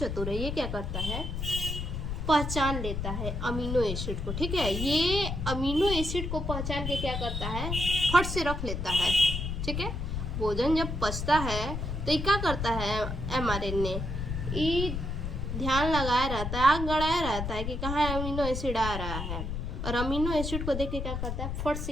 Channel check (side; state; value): left; noise; rumble, 3 dB below the sound